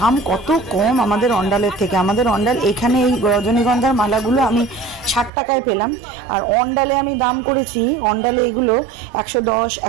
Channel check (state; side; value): drops out; left; at 5.3 s